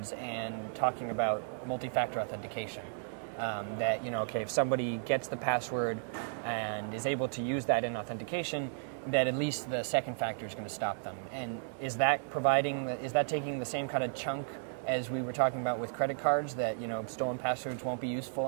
and talking about multi-factor authentication. That, if somebody gets the password and is able to use that in authentication, that at least the second factor is going to stop them. And is that taking the same kind of chunk as we were talking about with credit cards, that, stolen passwords won't be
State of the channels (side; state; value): left; silent; digital silence